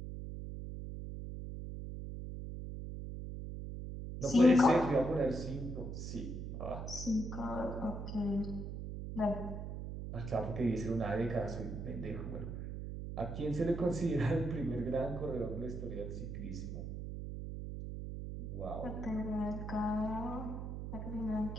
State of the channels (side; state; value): right; noise; hum, 6 dB below the sound